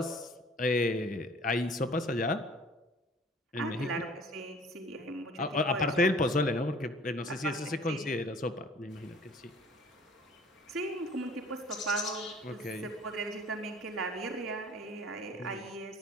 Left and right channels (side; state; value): both; normal; correlation 0.51